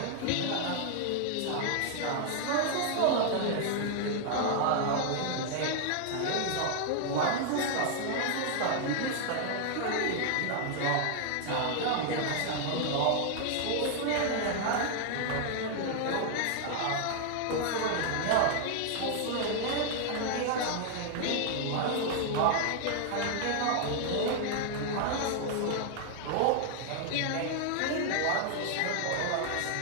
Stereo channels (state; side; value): different; both; correlation 0.00